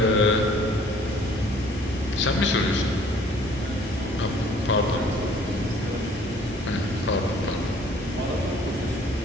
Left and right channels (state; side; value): normal; both; correlation 0.56